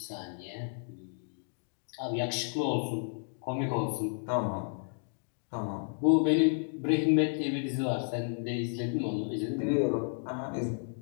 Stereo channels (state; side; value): silent; right; 56 dB below the other